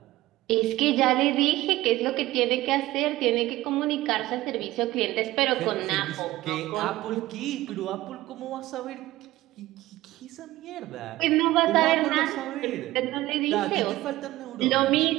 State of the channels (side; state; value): left; quieter; 17.0 dB